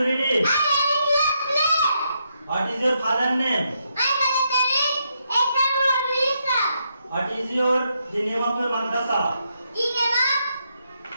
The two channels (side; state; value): both; inverted; correlation -0.80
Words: read in? I am in class 3. What is your father name? My mother name is Chetan Bhavirisa. What is the name of your madrasa? Geneva.